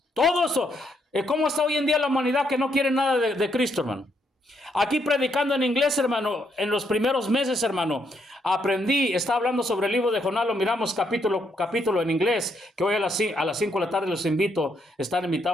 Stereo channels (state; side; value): normal; both; correlation 0.75